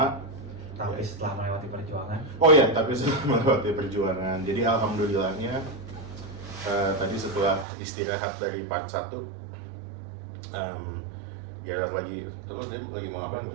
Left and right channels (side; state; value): left; drops out; at 7.7 s